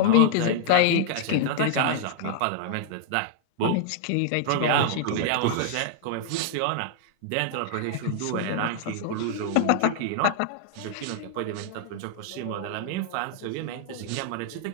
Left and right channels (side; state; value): both; different; correlation 0.00